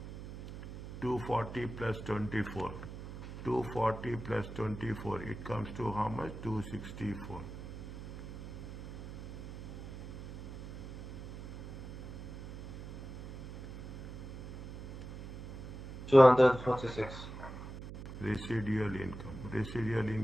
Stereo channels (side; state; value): right; noise; hum, 10 dB below the sound